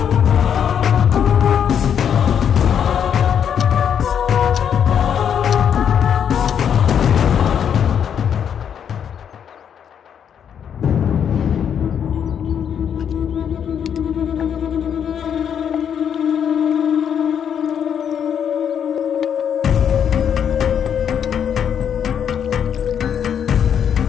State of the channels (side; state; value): right; quieter; 8.3 dB